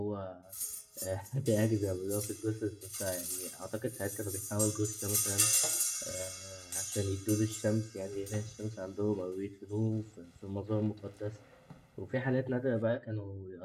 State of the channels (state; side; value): identical; both; correlation 1.00